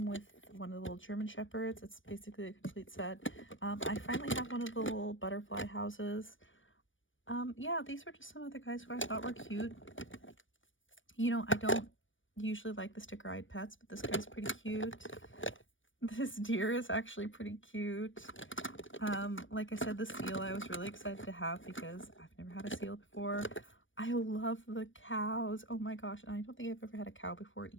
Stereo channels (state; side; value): late; right; 0.56 ms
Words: with one of the little German Shepherds. It's basically a complete set. I finally have one of the little butterfly houses. Yeah, these were just some of the guys who I thought were cute. You know, I don't usually like the sticker-eyed pets, but this guy's pretty cute. This deer is actually pretty cute. Like I said, the seal I was really excited to have because I've never had a seal before. I love the cows. Oh my gosh. And I don't think I've ever had a cow before